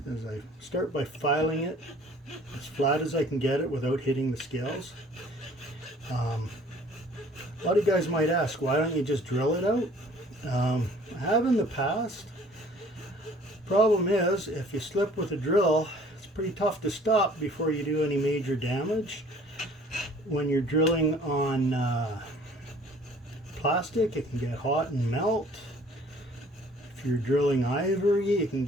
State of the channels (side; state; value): both; normal; correlation 0.53